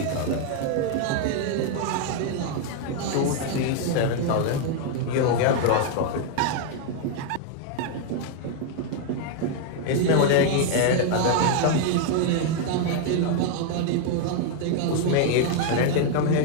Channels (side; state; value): both; different; correlation 0.00